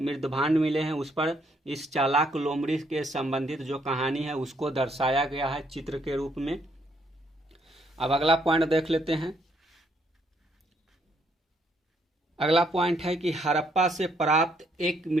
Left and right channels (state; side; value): normal; both; correlation 0.71